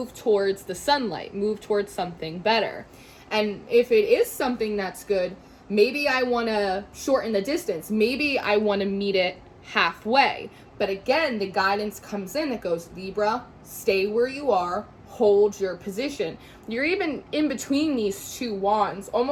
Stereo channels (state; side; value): identical; both; correlation 1.00